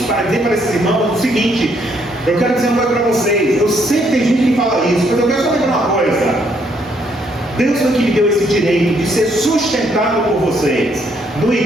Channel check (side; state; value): both; normal; correlation 0.71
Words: para dizer para esses irmãos o seguinte: eu quero dizer uma coisa para vocês. Eu sei que tem gente que fala isso, mas eu quero só lembrar uma coisa. Deus foi que me deu esse direito de ser sustentado por vocês. No